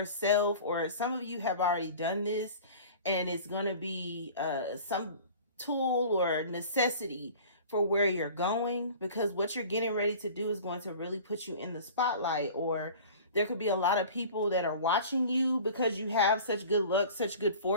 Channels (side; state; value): both; inverted; correlation -0.42